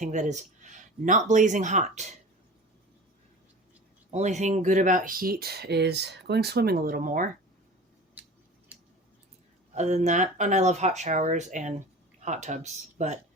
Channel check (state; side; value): normal; both; correlation 0.37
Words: that is not blazing hot. Only thing good about heat is going swimming a little more. Other than that, and I love hot showers and hot tubs, but